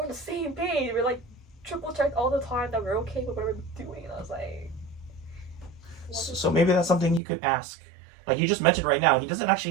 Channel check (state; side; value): drops out; left; at 7.2 s